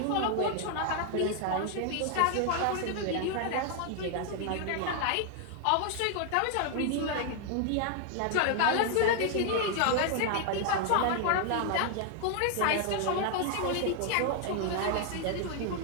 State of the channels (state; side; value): different; both; correlation 0.00